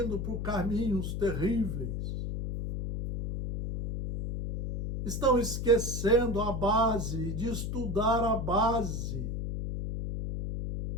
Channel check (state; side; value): noise; left; hum, 3 dB below the sound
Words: por caminhos terríveis. Estão esquecendo a base, de estudar a base.